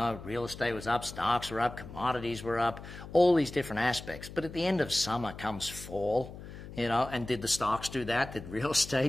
real estate was up, stocks were up, commodities were up, all these different aspects. But at the end of summer comes fall. You know, and did the stocks do that? Did real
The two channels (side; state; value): left; noise; hum, 13 dB below the sound